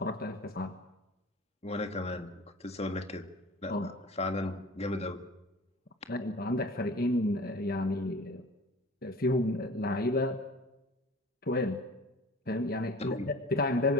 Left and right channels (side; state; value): both; normal; correlation 0.42